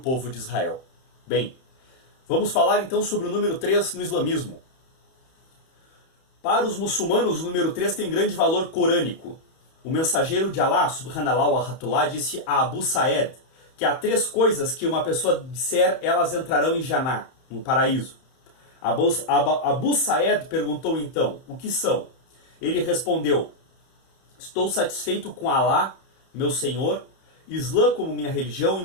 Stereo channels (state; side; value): late; right; 31 ms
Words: de Israel. Bem, vamos falar então sobre o número 3 no islamismo. Para os muçulmanos, o número 3 tem grande valor corânico. O mensageiro de Allah, subhanallah wa rahmatullah, disse a Abu Sa'ed que há 3 coisas que uma pessoa disser, elas entrarão em Jannah, no paraíso. Abu Sa'ed perguntou então, o que são? Ele respondeu, estou satisfeito com Allah, meu Senhor, Islã como minha religião e